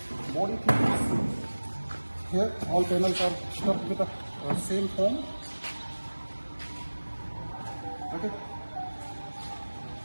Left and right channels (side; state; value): both; inverted; correlation -1.00